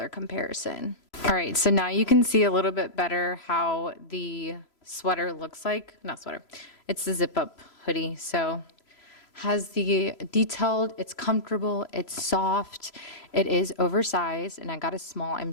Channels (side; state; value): right; late; 3.0 ms